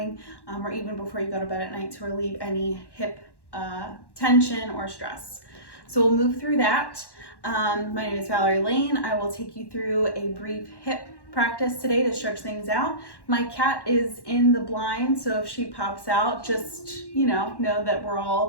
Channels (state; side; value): late; right; 1.1 ms